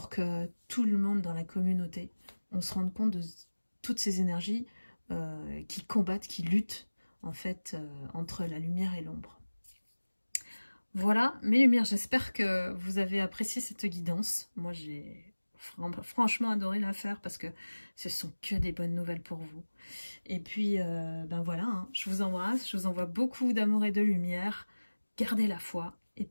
que tout le monde dans la communauté, on se rende compte de toutes ces énergies qui combattent, qui luttent en fait entre la lumière et l'ombre. Voilà, mes lumières, j'espère que vous avez apprécié cette guidance. Moi, j'ai franchement adoré la faire parce que ce sont que des bonnes nouvelles pour vous. Et puis, ben voilà, hein, je vous embrasse, je vous envoie beaucoup d'amour et de lumière. Gardez la foi et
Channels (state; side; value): inverted; both; correlation -1.00